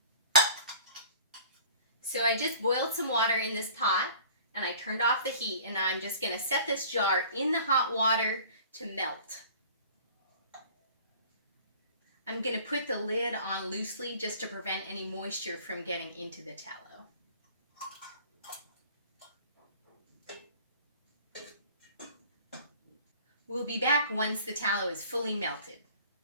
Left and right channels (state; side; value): inverted; both; correlation -0.47